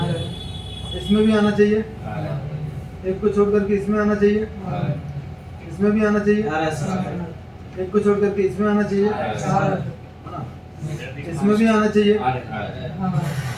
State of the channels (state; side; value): identical; both; correlation 1.00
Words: इसमें भी आना चाहिए। एक को छोड़ करके इसमें आना चाहिए, इसमें भी आना चाहिए। एक को छोड़ करके इसमें आना चाहिए, इसमें भी आना चाहिए।